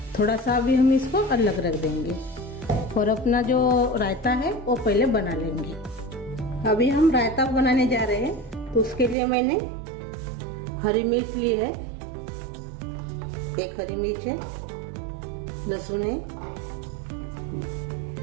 थोड़ा सा अभी हम इसको अलग रख देंगे और अपना जो रायता है वो पहले बना लेंगे। अभी हम रायता बनाने जा रहे हैं, तो उसके लिए मैंने हरी मिर्च ली है, 1 हरी मिर्च है, लहसुन है,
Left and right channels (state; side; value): drops out; left; at 9.2 s